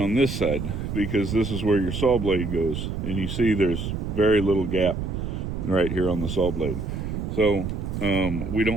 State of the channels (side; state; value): right; noise; rumble, 4 dB below the sound